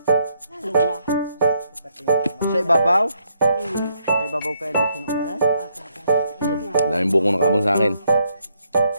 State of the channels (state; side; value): inverted; both; correlation -0.75